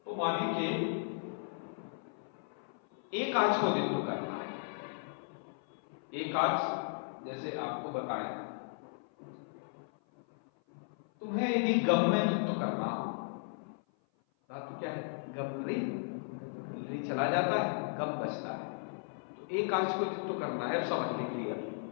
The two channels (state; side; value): silent; right; 54 dB below the other